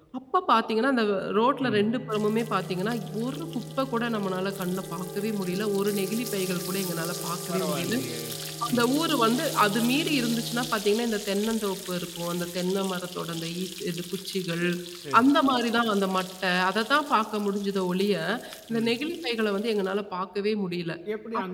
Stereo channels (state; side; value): identical; both; correlation 1.00